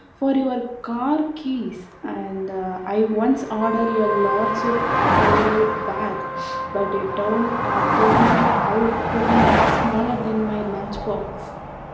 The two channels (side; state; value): both; identical; correlation 1.00